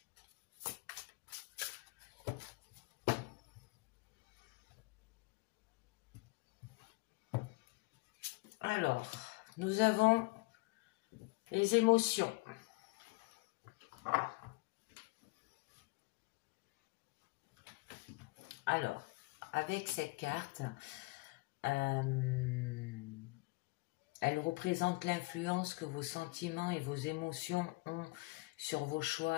Alors, nous avons les émotions. Alors, avec cette carte, elle représente l'influence que vos sentiments et vos émotions ont sur vos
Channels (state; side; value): quieter; right; 23.8 dB